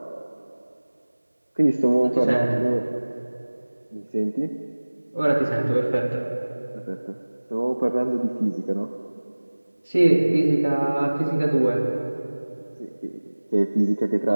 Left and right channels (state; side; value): inverted; both; correlation -1.00